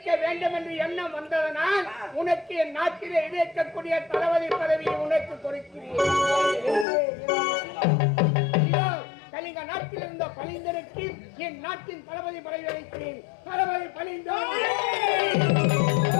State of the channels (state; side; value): drops out; right; at 6.9 s